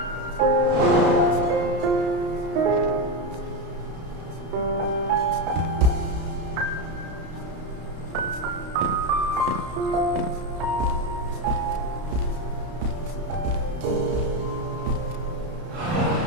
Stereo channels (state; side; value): late; left; 32 ms